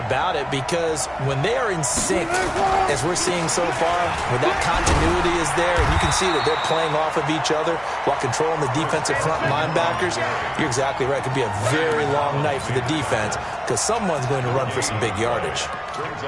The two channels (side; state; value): both; identical; correlation 1.00